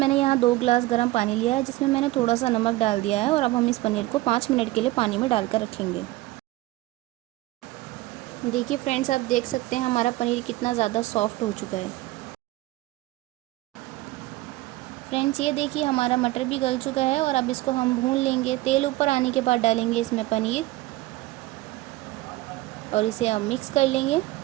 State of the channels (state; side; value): quieter; left; 18.6 dB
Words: यहाँ 2 गिलास गर्म पानी लिया है जिसमें मैंने थोड़ा सा नमक डाल दिया है और अब हम इस पनीर को 5 मिनट के लिए पानी में डालकर रखेंगे। देखिए फ्रेंड्स, आप देख सकते हैं हमारा पनीर कितना ज़्यादा सॉफ्ट हो चुका है। फ्रेंड्स, ये देखिए हमारा मटर भी गल चुका है और अब इसको हम भून लेंगे। तेल ऊपर आने के बाद डालेंगे इसमें पनीर और इसे अब मिक्स कर लेंगे।